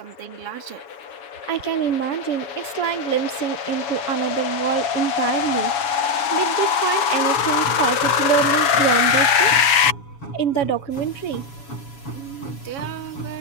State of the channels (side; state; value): right; late; 7.1 ms